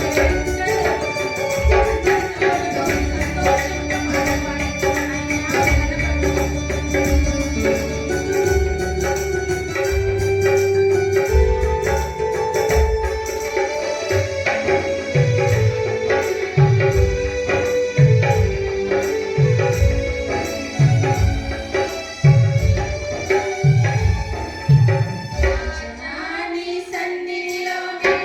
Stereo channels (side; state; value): both; identical; correlation 1.00